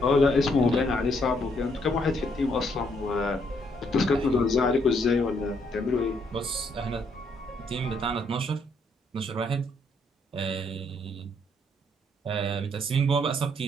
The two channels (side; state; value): both; normal; correlation 0.71